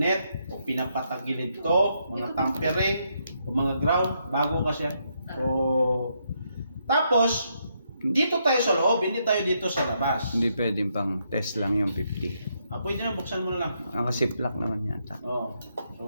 o pinapatagilid to, mga tampering o mga ground. Bago kasi yan. So, tapos, dito tayo sa loob, hindi tayo dito sa labas. Hindi pwedeng pang test lang yung 50. Pwede na, buksan mo na lang. Nakasiplak naman yata. Oo. So,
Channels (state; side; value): inverted; both; correlation -0.77